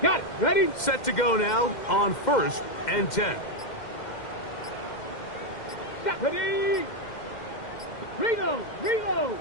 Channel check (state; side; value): late; right; 2.1 ms